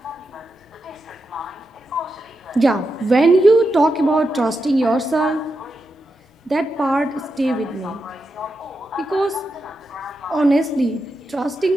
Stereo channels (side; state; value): both; normal; correlation 0.87